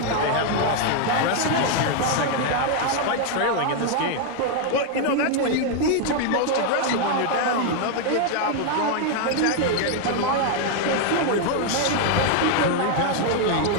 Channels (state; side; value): different; both; correlation 0.00